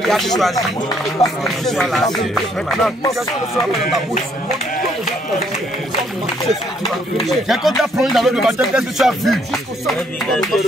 il a choisi parce que je suis là. Maintenant, quand tu as plongé dans l'eau de baptême, qu'est-ce que tu as vu?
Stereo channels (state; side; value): normal; both; correlation 0.68